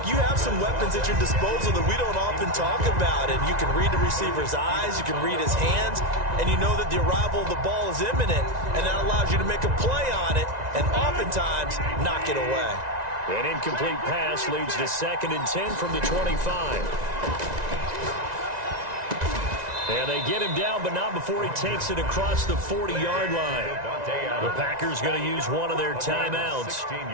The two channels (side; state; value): left; late; 1.9 ms